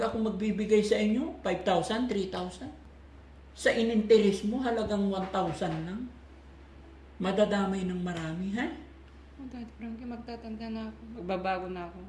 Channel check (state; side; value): identical; both; correlation 1.00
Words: magbibigay sa inyo, 5,000, 3,000. Sa ininteres mo, halagang 1,000 lang. Madadamay ng marami, ha? Oh, Daddy Frankie, magtatanda na ako. Magbabago na ako.